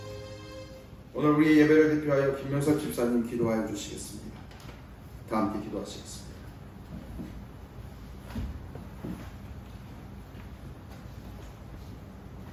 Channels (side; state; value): both; identical; correlation 1.00